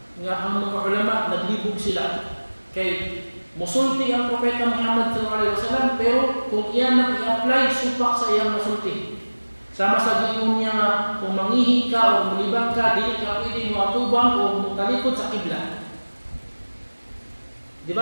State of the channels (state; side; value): inverted; both; correlation -1.00